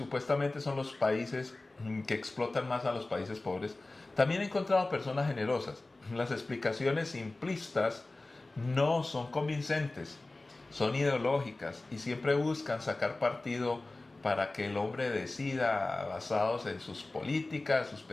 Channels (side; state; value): right; quieter; 3.0 dB